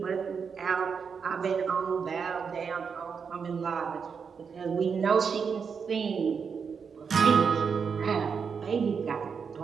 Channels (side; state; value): left; quieter; 6.1 dB